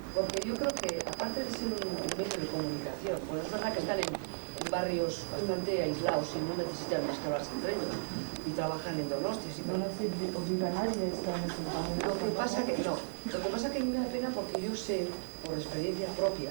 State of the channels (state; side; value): silent; left; digital silence